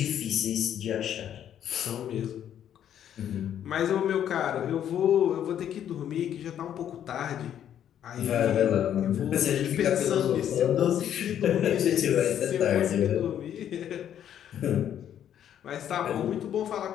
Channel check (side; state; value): right; quieter; 10.1 dB